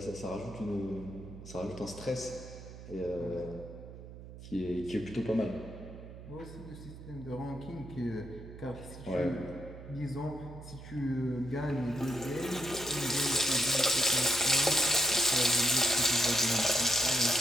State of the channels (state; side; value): noise; right; hum, 14 dB below the sound